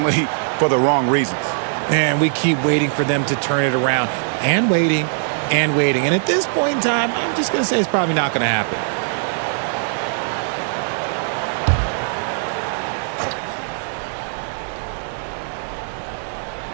for the wrong reasons. And we keep waiting for them to turn it around and waiting and waiting. And at this point in time, I'm just going to say it's probably not going to happen.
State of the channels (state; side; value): silent; left; digital silence